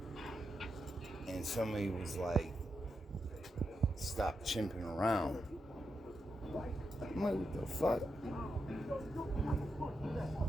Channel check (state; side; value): normal; both; correlation 0.85